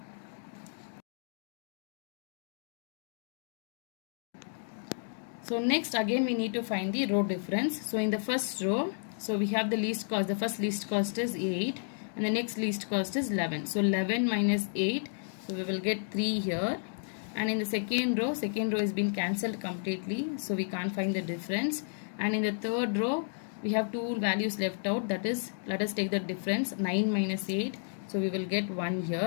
So next again we need to find the row difference. So in the first row, so we have the least cost. The first least cost is 8 and the next least cost is 11. So 11 minus 8, so we will get 3 here. And in the second row is been cancelled completely, so we can't find the difference. And in the third row we have two values left out, that is, let us take the difference, 9 minus 8, so we will get 1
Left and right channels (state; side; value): silent; right; digital silence